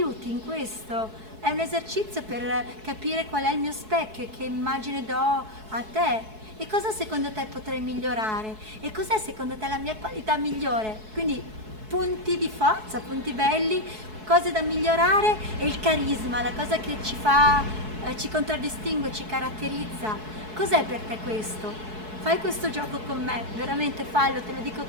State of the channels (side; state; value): left; late; 4.7 ms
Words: in questo? È un esercizio per capire qual è il mio specchio e che immagine do a te. E cosa secondo te potrei migliorare? E cos'è secondo te la mia qualità migliore? Quindi punti di forza, punti belli, cose da migliorare e il carisma, la cosa che ci fa, ci contraddistingue, ci caratterizza. Cos'è per te questo? Fai questo gioco con me, veramente fallo, te lo dico